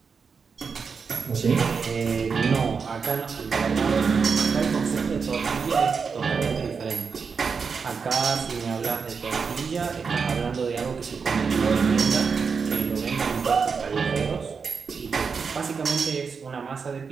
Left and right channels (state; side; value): quieter; left; 5.6 dB